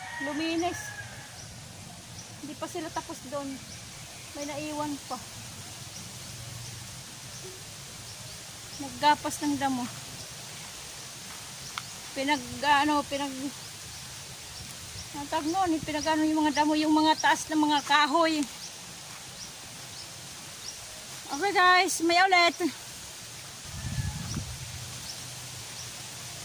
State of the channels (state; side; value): identical; both; correlation 1.00